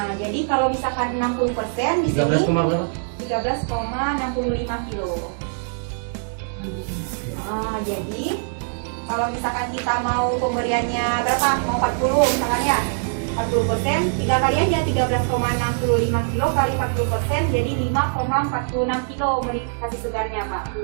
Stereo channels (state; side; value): silent; left; digital silence